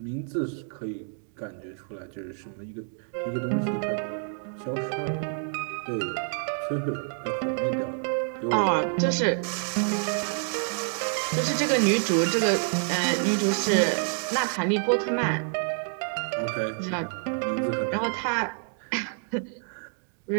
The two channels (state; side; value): silent; left; 59 dB below the other